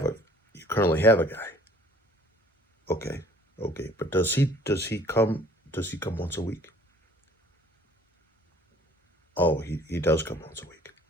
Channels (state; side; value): normal; both; correlation 0.55